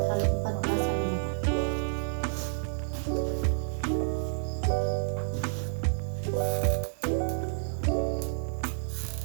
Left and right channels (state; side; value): silent; left; digital silence